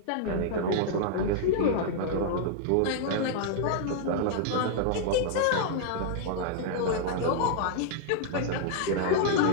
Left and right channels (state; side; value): different; both; correlation -0.01